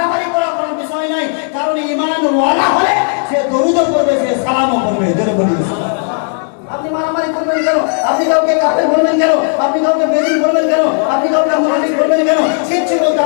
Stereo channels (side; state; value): right; silent; 56 dB below the other